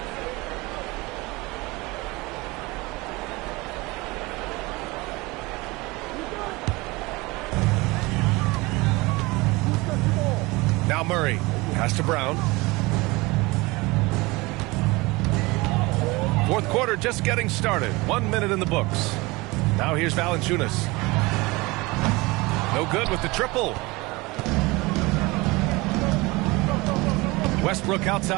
Now Murray. Pass to Brown. Fourth quarter just getting started. 1 minute in the books. Now here's Valanciunas. No good with the triple. Westbrook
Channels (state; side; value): quieter; left; 23.2 dB